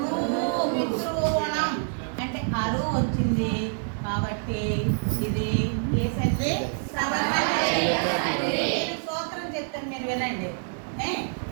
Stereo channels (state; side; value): silent; left; digital silence